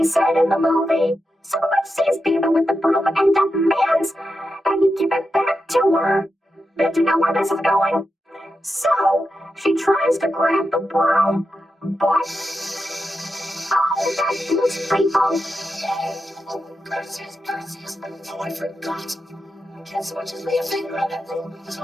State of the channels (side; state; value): both; normal; correlation 0.88